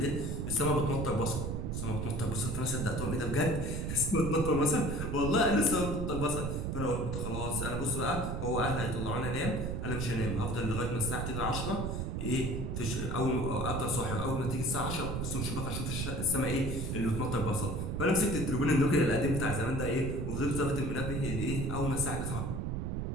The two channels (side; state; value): right; noise; rumble, 2 dB below the sound